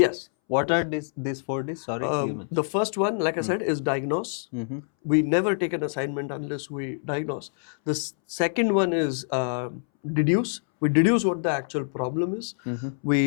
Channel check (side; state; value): right; silent; 61 dB below the other